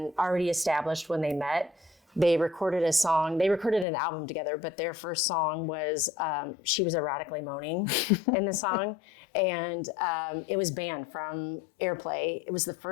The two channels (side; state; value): right; drops out; at 3.9 s